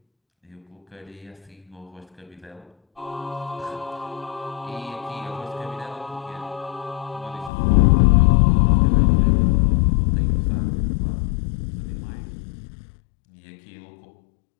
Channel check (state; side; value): drops out; right; at 7.5 s